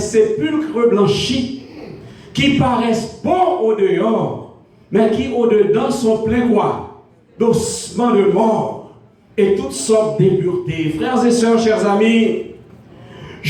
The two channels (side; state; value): both; identical; correlation 1.00